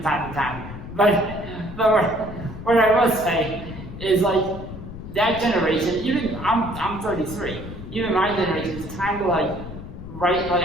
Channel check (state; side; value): noise; left; rumble, 11 dB below the sound